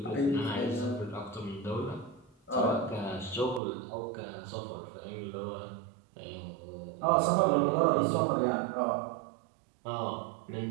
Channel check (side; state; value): left; drops out; at 3.6 s